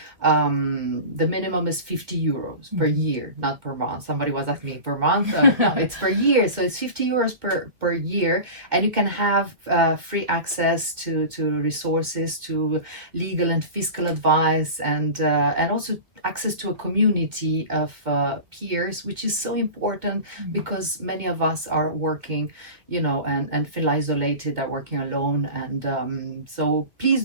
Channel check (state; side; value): late; left; 2.2 ms